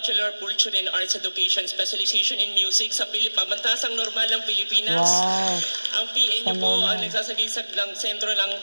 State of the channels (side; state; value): both; inverted; correlation -1.00